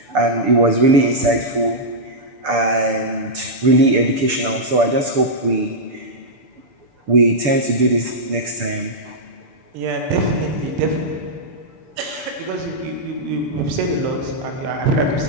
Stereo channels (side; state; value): left; late; 6.9 ms